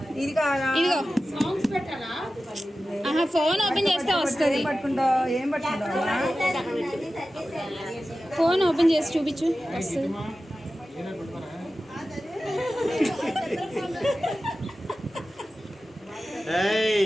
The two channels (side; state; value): both; normal; correlation 0.94